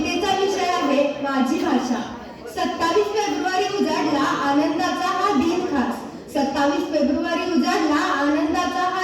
विषय आहे माझी भाषा। 27 फेब्रुवारी उजाडला आनंदाचा हा दिन खास। 27 फेब्रुवारी उजाडला आनंदाचा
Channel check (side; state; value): both; identical; correlation 1.00